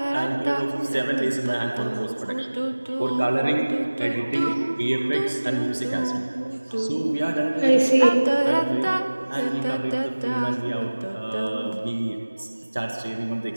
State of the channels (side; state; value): both; inverted; correlation -1.00